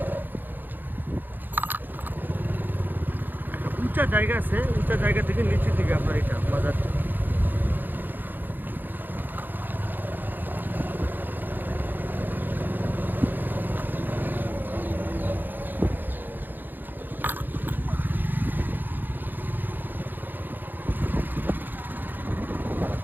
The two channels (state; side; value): late; left; 0.089 ms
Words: একটা উঁচা জায়গা আছে, উঁচা জায়গা থেকে নিচের দিকে আপনার এটা বাজারটা।